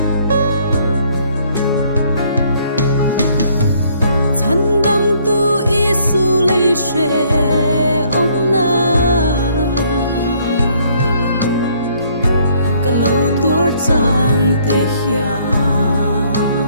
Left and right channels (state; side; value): inverted; both; correlation -0.64